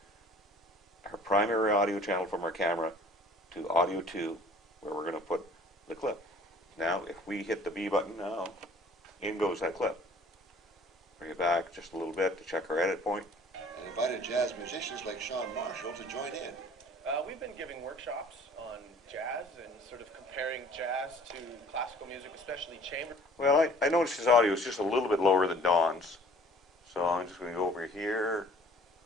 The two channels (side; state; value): both; normal; correlation 0.53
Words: our primary audio channel from our camera to audio 2, where we're going to put the clip. Now, if we hit the B button now, in goes that clip. Bring it back just a little bit to check our edit point. And invited jazz musicians like Sean Marshall to join in. We've been giving workshops on jazz and sort of comparing jazz to classical music, especially chamber. Well, I noticed his audio is just a little bit lower than Don's. So I'm just going to go over here